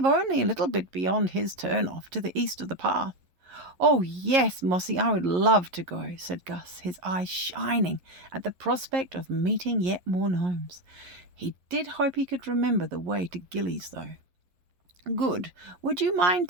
only a little bit beyond his turn-off to the east of the path. Oh, yes, Mossy, I would love to go, said Gus, his eyes shining at the prospect of meeting yet more gnomes. He did hope he could remember the way to Gilly's, though. Good. Would you mind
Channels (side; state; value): left; late; 11 ms